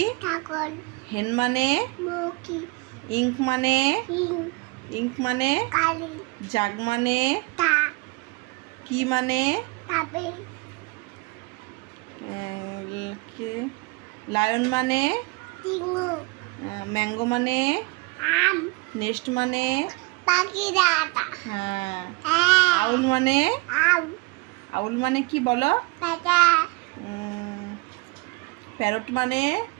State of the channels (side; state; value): left; quieter; 27.1 dB